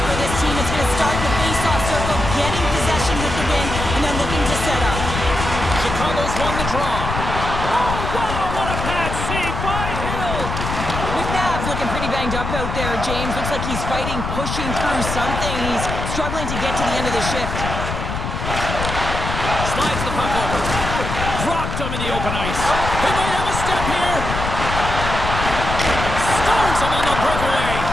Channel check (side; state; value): left; noise; rumble, 4 dB below the sound